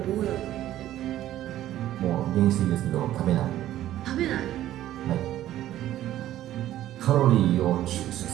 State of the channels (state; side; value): quieter; left; 13.2 dB